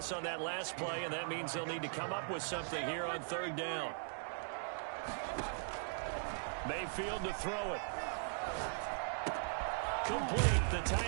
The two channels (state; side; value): silent; left; digital silence